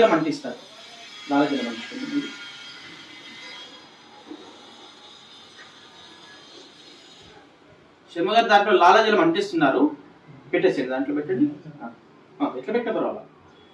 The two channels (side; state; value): both; identical; correlation 1.00